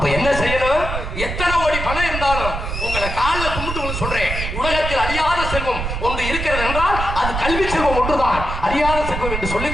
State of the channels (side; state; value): right; noise; rumble, 4 dB below the sound